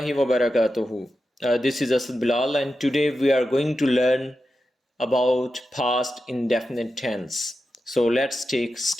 wa barakatuhu. This is Asad Bilal, and today we are going to learn about past indefinite tense. So let's take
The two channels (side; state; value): both; normal; correlation 0.90